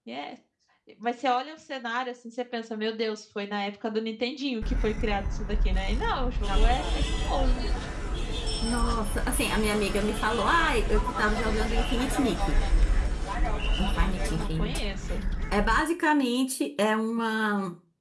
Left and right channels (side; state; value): both; identical; correlation 1.00